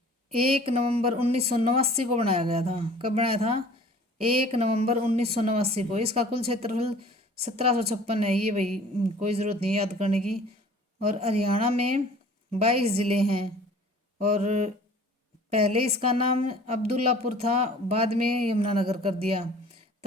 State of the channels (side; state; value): both; normal; correlation 0.48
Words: 1 नवंबर 1989 को बनाया गया था। कब बनाया था? 1 नवंबर 1989 को। इसका कुल क्षेत्रफल 1756 है। ये भाई कोई ज़रूरत नहीं याद करने की। और हरियाणा में 22 ज़िले हैं और पहले इसका नाम अब्दुल्लापुर था, बाद में यमुनानगर कर दिया,